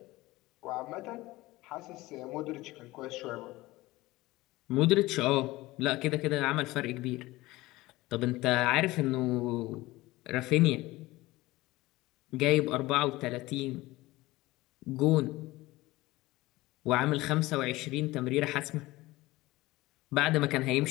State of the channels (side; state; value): right; quieter; 19.3 dB